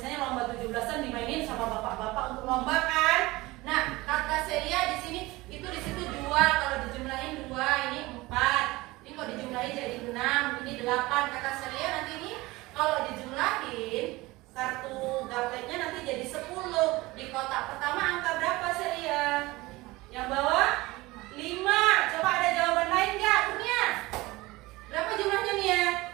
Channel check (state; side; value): quieter; left; 20.7 dB